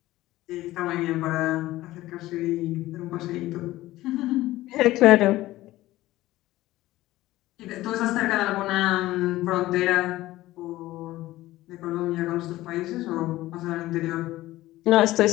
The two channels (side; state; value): right; quieter; 16.6 dB